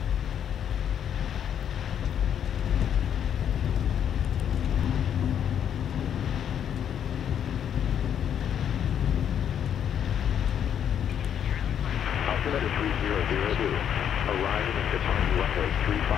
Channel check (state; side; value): quieter; right; 9.0 dB